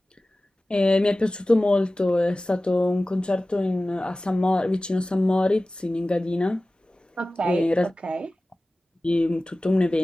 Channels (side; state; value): both; normal; correlation 0.97